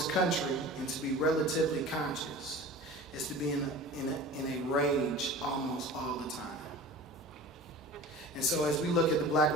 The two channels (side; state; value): both; normal; correlation 0.38